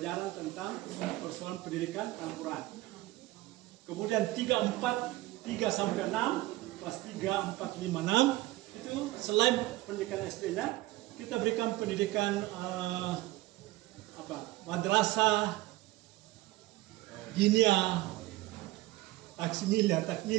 tentang persoalan pendidikan Al-Quran. Kemudian 3 sampai 6, kelas 3, 4, 5, 6 itu selain pendidikan SD-nya, kita berikan pendidikan madrasah, dinia,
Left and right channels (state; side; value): quieter; left; 18.4 dB